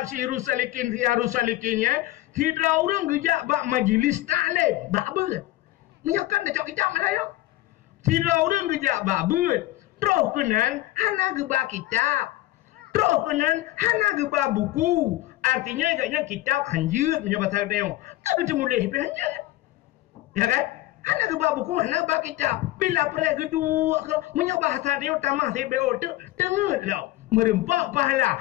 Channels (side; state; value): right; quieter; 16.9 dB